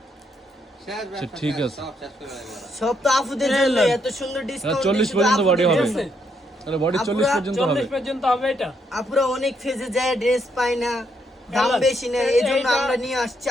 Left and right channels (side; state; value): both; normal; correlation 0.75